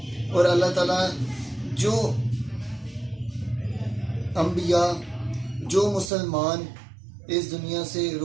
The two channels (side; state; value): left; drops out; at 6.1 s